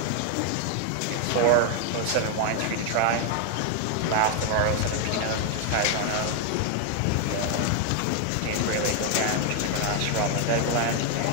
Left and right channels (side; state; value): both; different; correlation 0.00